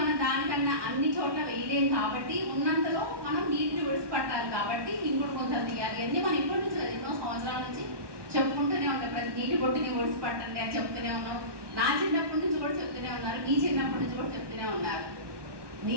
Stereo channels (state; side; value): late; left; 1.2 ms